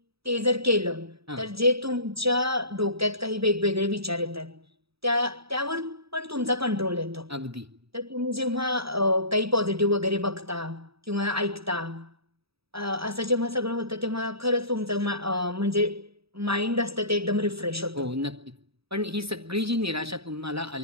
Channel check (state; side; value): late; left; 0.77 ms